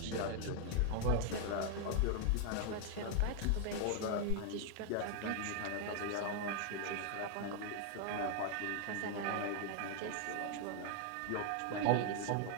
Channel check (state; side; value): different; both; correlation 0.00